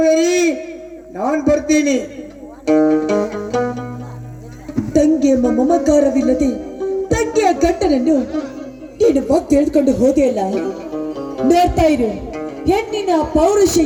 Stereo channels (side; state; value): both; identical; correlation 1.00